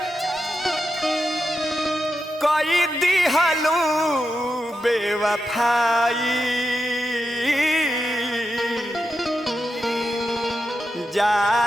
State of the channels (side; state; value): both; normal; correlation 0.88